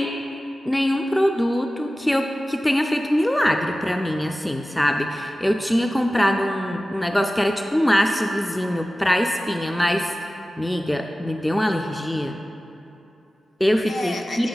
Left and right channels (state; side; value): normal; both; correlation 0.96